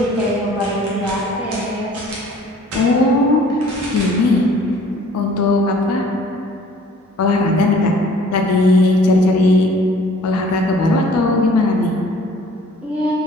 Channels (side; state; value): both; normal; correlation 0.53